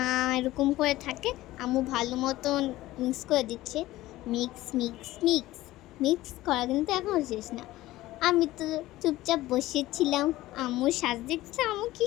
এরকম করে থাকে। আম্মু ভালো মতন মিক্স করে দিচ্ছে। মিক্স মিক্স মিক্স মিক্স করা কিন্তু এখন শেষ না। আমি তো চুপচাপ বসেছিলাম, আম্মু সাজ দেখছে। আম্মু কী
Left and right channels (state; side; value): quieter; right; 16.8 dB